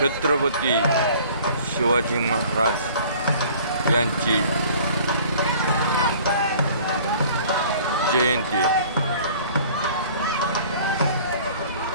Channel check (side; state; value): both; inverted; correlation -0.50